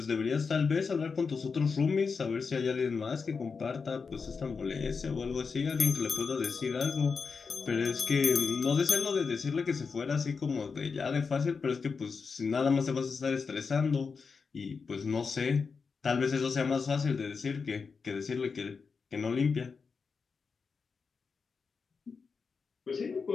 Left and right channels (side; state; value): right; quieter; 5.2 dB